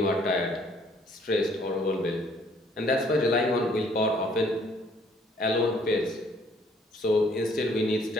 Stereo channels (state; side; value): normal; both; correlation 0.62